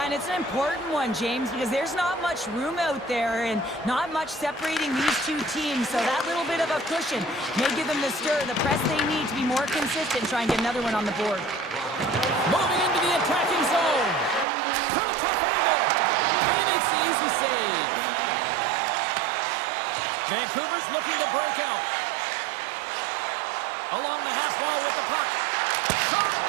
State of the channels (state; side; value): drops out; left; at 14.5 s